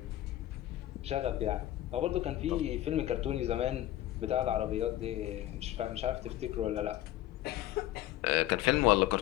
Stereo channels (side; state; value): right; quieter; 14.2 dB